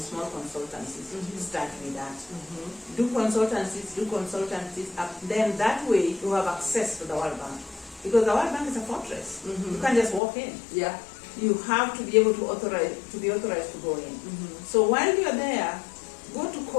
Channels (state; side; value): drops out; right; at 10.2 s